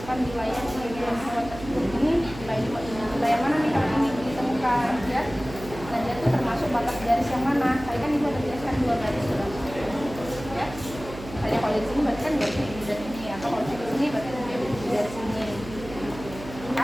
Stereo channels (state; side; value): noise; right; hum, 13 dB below the sound